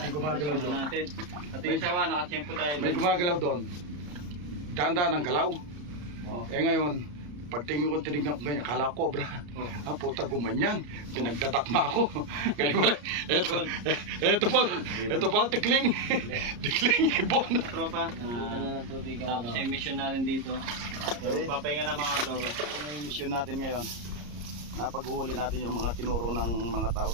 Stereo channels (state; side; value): late; left; 34 ms